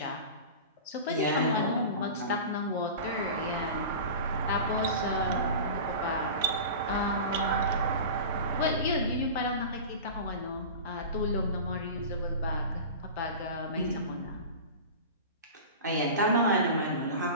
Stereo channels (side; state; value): both; inverted; correlation -0.32